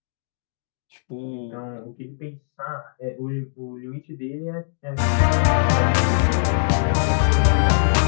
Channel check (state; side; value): silent; right; digital silence